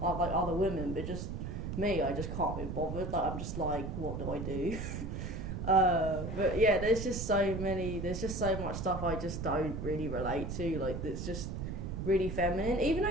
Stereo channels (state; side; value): noise; right; rumble, 5 dB below the sound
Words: like other women, but just me, I just can't be bothered. Like I'm just like, what do I do? But yeah, there's just so much stuff I just don't really relate to. Like it's just really feminine, even